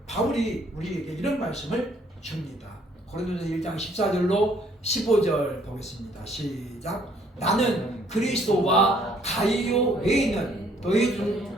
바울이 우리에게 이런 말씀을 줍니다. 고린도전서 1장 14절로 15절 보겠습니다. 시작. 나는 그리스도와 가이오 외에는 너희 중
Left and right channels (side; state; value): both; normal; correlation 0.63